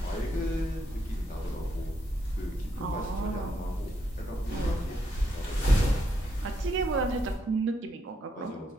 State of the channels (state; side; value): normal; both; correlation 0.78